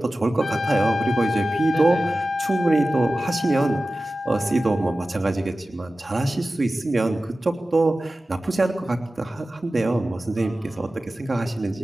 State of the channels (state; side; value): normal; both; correlation 0.95